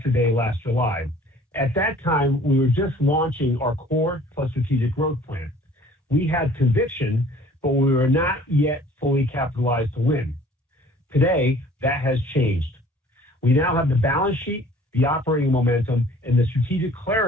Day last July. At that time, we were just launching our core plus strategic growth plan. We had conviction, but we were not yet fully capitalized to win. Today, that has changed. We now have the balance sheet, the operating momentum, and the strategic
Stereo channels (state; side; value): normal; both; correlation 0.51